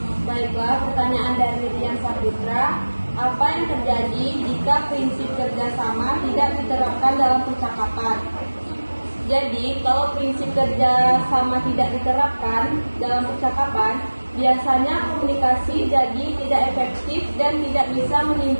Baiklah, pertanyaan dari Rian Sapitra. Apa yang terjadi jika prinsip kerjasama tidak diterapkan dalam percakapan? Jadi, kalau prinsip kerjasama tidak diterapkan dalam percakapan, biasanya komunikasi jadi tidak efektif dan tidak bisa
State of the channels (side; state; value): both; inverted; correlation -1.00